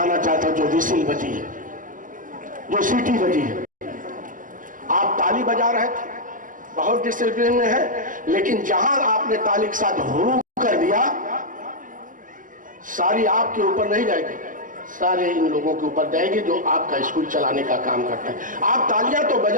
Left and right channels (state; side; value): late; left; 0.38 ms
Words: चाहता हूँ, जो विसिल बजी है, जो सीटी बजी है। आप ताली बजा रहे थे, बहुत डिसिप्लिन में है, लेकिन जहां आपने ताली के साथ हुरू कर दिया, सारी आपके ऊपर नहीं जाएगी, सारे इन लोगों के ऊपर जाएगी जो आपका स्कूल चलाने का काम करते हैं। आप तालियां तो